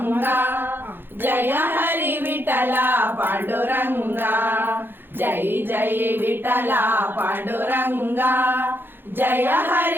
ಜಯ ಹರಿ ವಿಠಲ ಪಾಂಡುರಂಗ, ಜೈ ಜೈ ವಿಠಲ ಪಾಂಡುರಂಗ, ಜಯ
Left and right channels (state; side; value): late; left; 0.10 ms